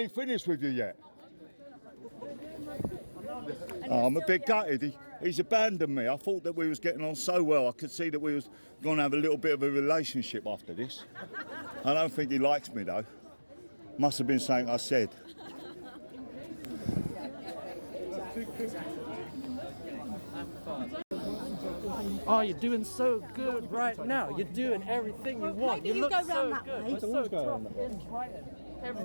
ain't finished with you yet. Oh, I'm a bit gutted. He's abandoned me. I thought that we was getting on so well. I could see that we was going to have a little bit of a relationship after this. I don't think he likes me though. Must have been something I said. Oh, you're doing so good right now. You're doing everything you want. maybe you look go so round that good. way. You're so tough in Brighton.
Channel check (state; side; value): inverted; both; correlation -1.00